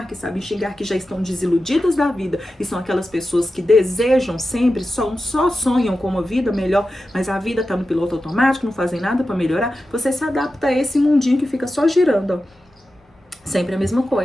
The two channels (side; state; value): both; normal; correlation 0.92